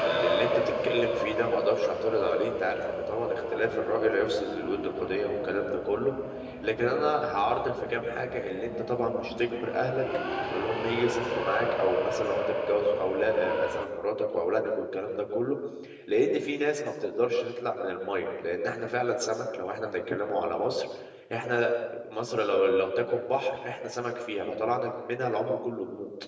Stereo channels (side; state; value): both; identical; correlation 1.00